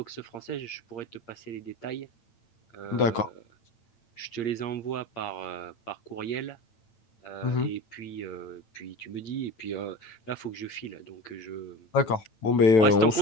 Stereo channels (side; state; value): right; late; 8.6 ms